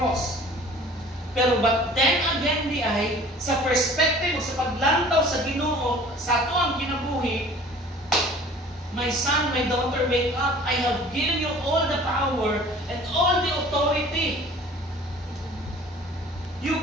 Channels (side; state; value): both; normal; correlation 0.47